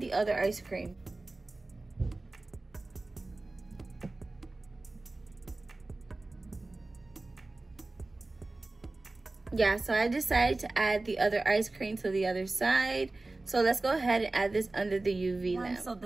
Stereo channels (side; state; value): left; quieter; 3.1 dB